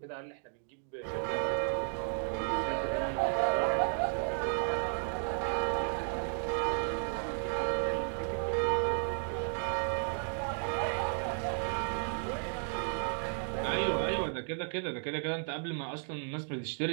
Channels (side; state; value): left; silent; 55 dB below the other